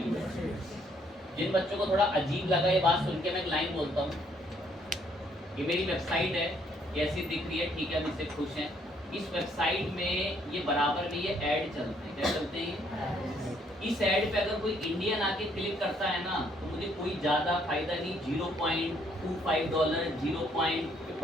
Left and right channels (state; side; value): normal; both; correlation 0.67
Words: जिन बच्चों को थोड़ा अजीब लगा ये बात सुन के, मैं एक लाइन बोलता हूँ, ये मेरी वेबसाइट है, कैसी दिख रही है, ठीक है, अब इससे खुश हैं, इस वेबसाइट में ये बराबर में ये ऐड चलते हैं, क्या चलते हैं? इस ऐड पे अगर कोई इंडियन आके क्लिक करता है ना तो मुझे कोई ज़्यादा फायदा नहीं, $0.25,